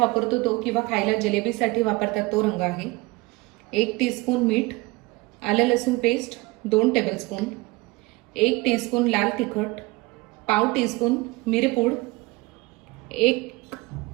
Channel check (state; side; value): quieter; left; 22.6 dB